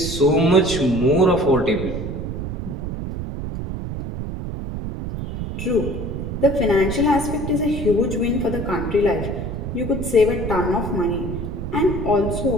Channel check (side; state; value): right; noise; rumble, 5 dB below the sound